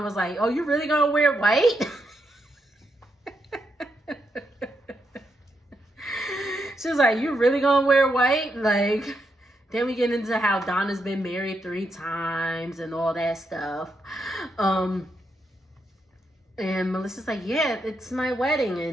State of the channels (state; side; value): normal; both; correlation 0.82